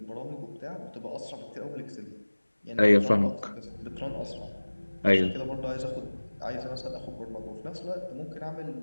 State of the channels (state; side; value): inverted; both; correlation -1.00